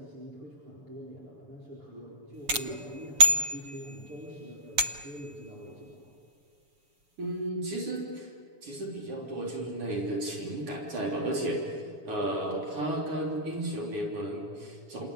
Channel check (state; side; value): late; left; 7.4 ms